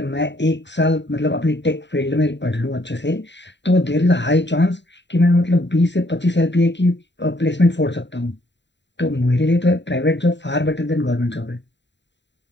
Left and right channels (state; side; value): late; right; 0.52 ms